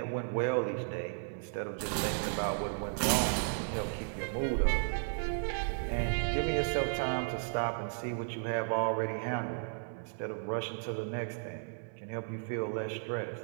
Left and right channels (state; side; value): silent; left; digital silence